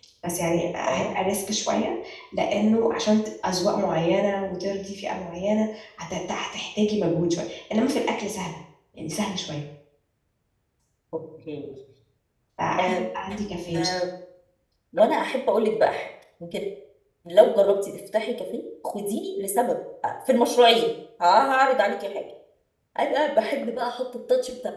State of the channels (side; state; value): both; identical; correlation 1.00